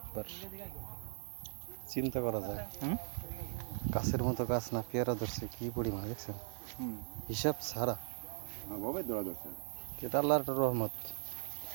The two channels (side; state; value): left; silent; digital silence